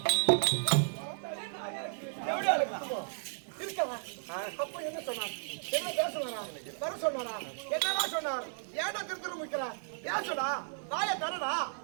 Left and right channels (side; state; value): left; silent; digital silence